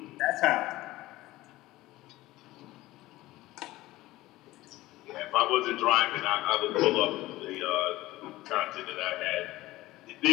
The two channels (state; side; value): quieter; right; 17.7 dB